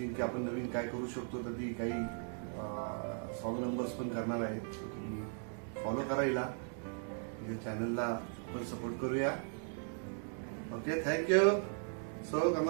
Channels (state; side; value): silent; left; 53 dB below the other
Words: की आपण नवीन काय करू शकतो, तर ती काही सॉन्ग नंबर्स पण करणार आहे। तुम्ही फॉलो करा हिला, या चॅनलला आपण सपोर्ट करूया। Okay, thank you. So